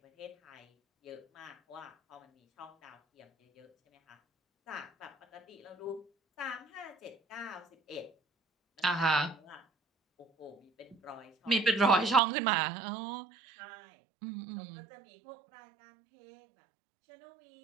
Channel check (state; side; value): drops out; left; at 12.2 s